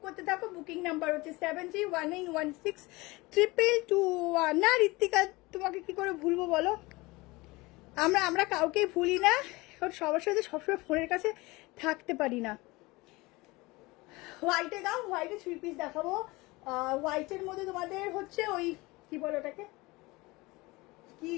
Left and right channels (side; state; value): right; quieter; 22.6 dB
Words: করতে থাকো। বুকিং নাম্বার হচ্ছে 7319162221। না ঋত্বিকা, তোমাকে কি করে ভুলবো বলো? আমরা কাউকেই ভুলি না, কারণ সবার সাথে সবসময় ফোনের কাছে থাকতে পারি না। হোয়াইটে দাও, হোয়াইটে 3 পিস দেখাবো। হোয়াইটের মধ্যে তোমাদের হচ্ছে ওই কি বলো ওটাকে, কি